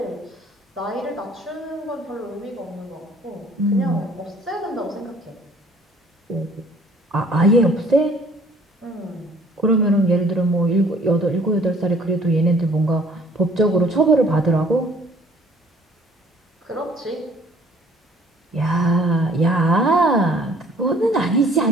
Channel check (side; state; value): both; normal; correlation 0.56